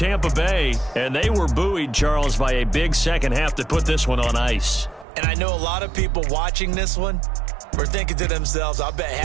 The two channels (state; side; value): drops out; left; at 5.1 s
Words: Bay. And they were buoyed, Charles, by a big second half to put this one on ice. And I know a lot of people watching this one were thinking to themselves, I bet